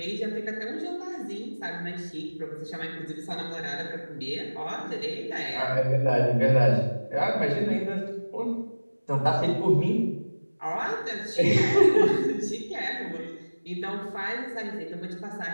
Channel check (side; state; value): both; inverted; correlation -1.00